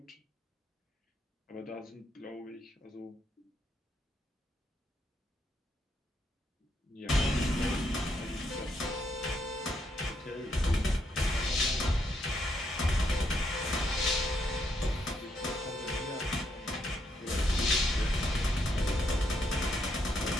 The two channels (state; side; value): normal; both; correlation 0.77